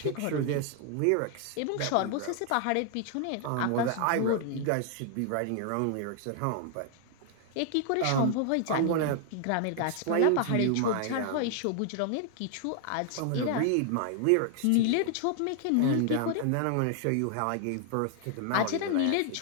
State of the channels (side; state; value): both; different; correlation 0.00